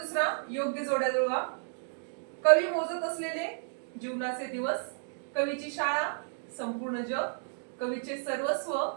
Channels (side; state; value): left; silent; digital silence